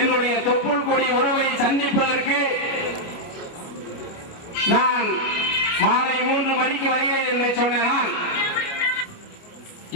தொப்புள் கொடி உறவை சந்திப்பதற்கு நான் மாலை 3 மணிக்கு வருகிறேன் என்று சொன்னால்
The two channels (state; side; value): late; right; 29 ms